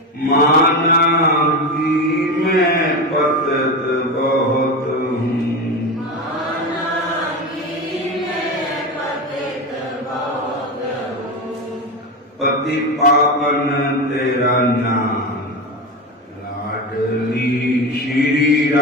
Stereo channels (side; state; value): both; normal; correlation 0.20